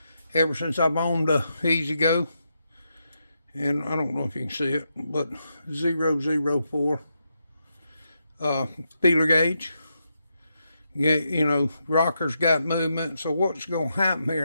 ever since I've owned a Ezgo. And I don't know if you can see it, but 004 feeler gauge. Yeah, you know, rocker's got movement. So what's going to happen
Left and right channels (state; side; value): inverted; both; correlation -0.83